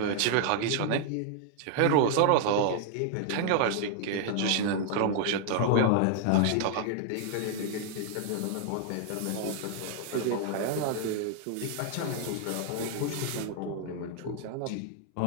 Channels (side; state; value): both; different; correlation 0.00